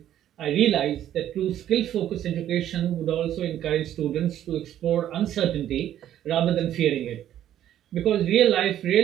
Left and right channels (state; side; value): quieter; left; 11.5 dB